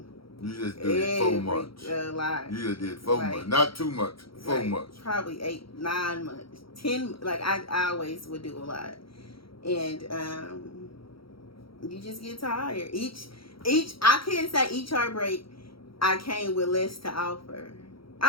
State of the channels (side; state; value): right; late; 0.75 ms